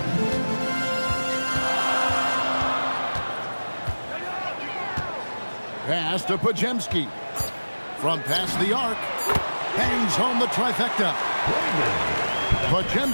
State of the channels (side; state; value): both; inverted; correlation -1.00